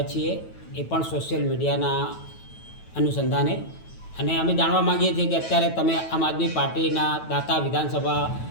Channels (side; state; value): right; late; 9.1 ms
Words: છીએ, એ પણ સોશિયલ મીડિયાના અનુસંધાને, અને અમે જાણવા માગીએ છીએ કે અત્યારે તમે આમ આદમી પાર્ટીના દાતા વિધાનસભા